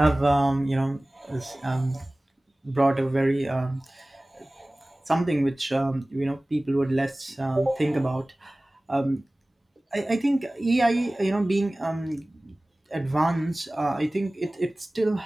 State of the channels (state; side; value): normal; both; correlation 0.98